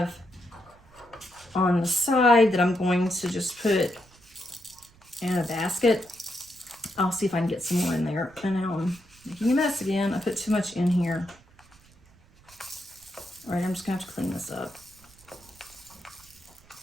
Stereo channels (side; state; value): right; noise; rumble, 27 dB below the sound